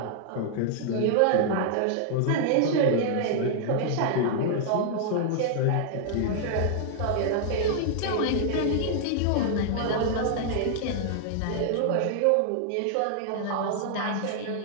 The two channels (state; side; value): different; both; correlation -0.01